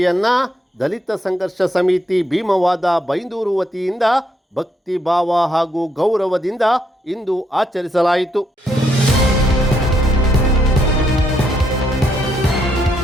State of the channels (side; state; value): both; normal; correlation 0.75